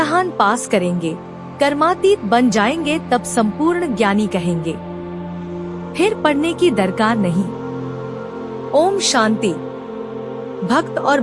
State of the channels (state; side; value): identical; both; correlation 1.00